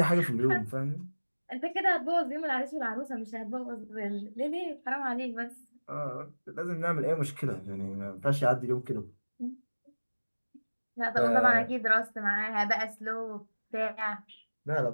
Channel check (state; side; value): inverted; both; correlation -1.00